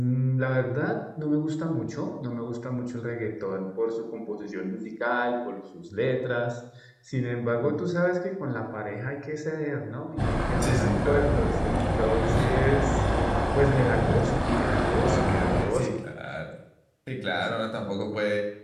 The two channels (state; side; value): identical; both; correlation 1.00